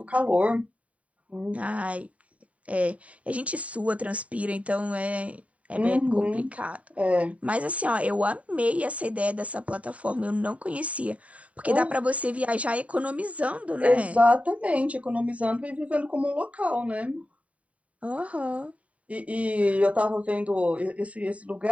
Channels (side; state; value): left; late; 0.067 ms